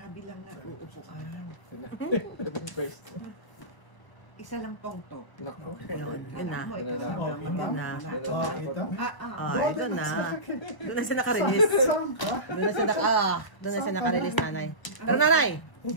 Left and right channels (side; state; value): right; late; 1.3 ms